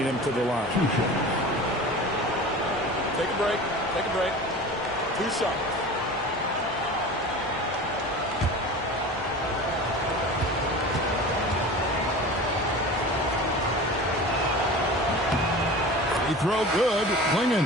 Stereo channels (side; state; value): both; normal; correlation 0.35